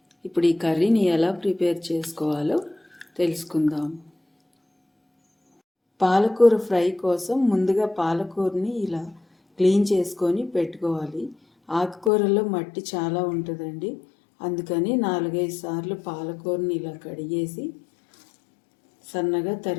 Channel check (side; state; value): right; drops out; at 12.1 s